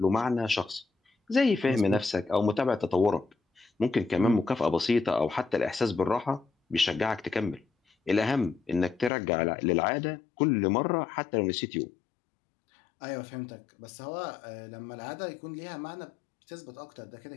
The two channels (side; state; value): right; drops out; at 9.1 s